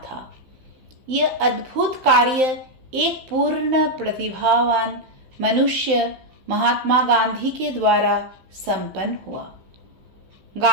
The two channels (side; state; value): left; late; 16 ms